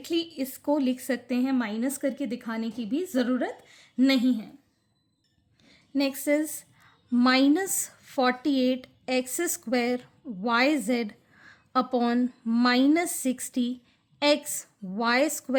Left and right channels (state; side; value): identical; both; correlation 1.00